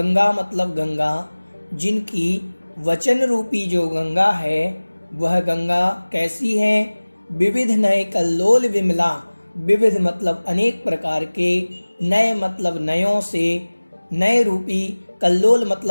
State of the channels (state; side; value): inverted; both; correlation -1.00